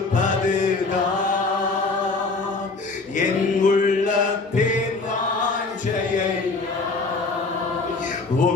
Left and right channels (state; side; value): quieter; right; 3.7 dB